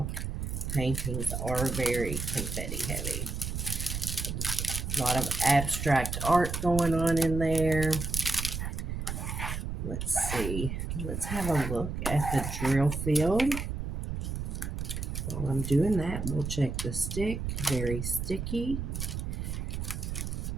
paintings are very confetti heavy. A lot of abstract art going on in there. Let's see. Let's have a look at the drill field. While I'm doing that, we'll check the stick. Very sticky.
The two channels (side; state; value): right; noise; rumble, 4 dB below the sound